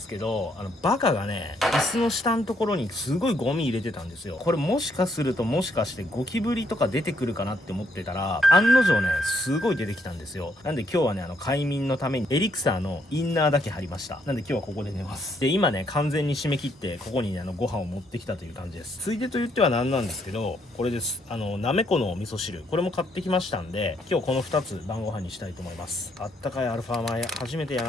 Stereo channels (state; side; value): normal; both; correlation 0.72